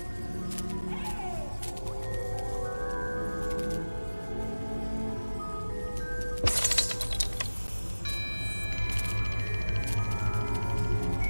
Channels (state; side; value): inverted; both; correlation -1.00